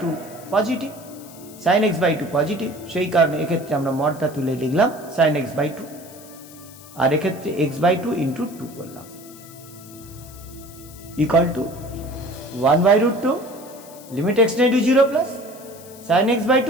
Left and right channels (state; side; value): noise; left; hiss, 20 dB below the sound